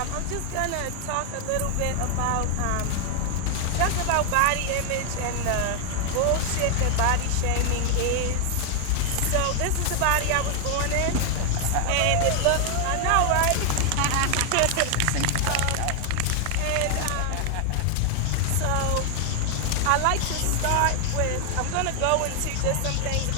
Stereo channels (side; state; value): both; different; correlation 0.00